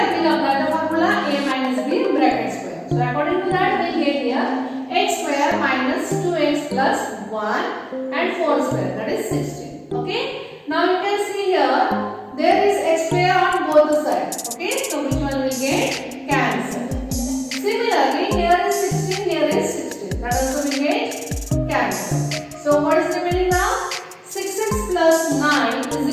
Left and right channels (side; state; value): both; identical; correlation 1.00